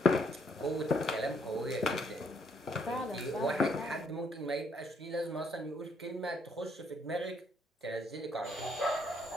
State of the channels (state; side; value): normal; both; correlation 0.70